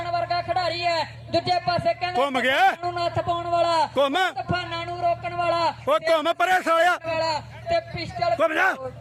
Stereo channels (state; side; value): identical; both; correlation 1.00